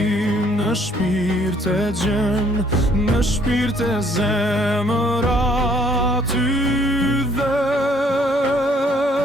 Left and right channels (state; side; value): normal; both; correlation 0.63